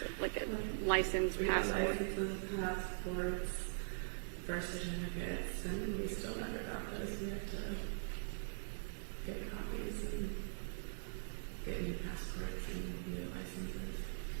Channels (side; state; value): left; silent; digital silence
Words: So like a license, we got passport? licenses, passports, birth certificates, and we still never got those. We had to get copies and get new passports and new licenses.